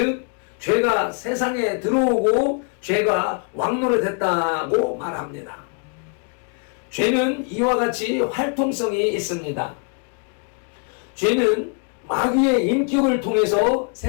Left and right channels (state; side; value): quieter; right; 38.8 dB